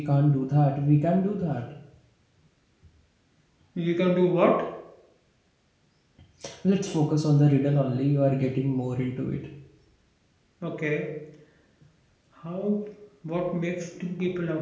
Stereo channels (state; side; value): identical; both; correlation 1.00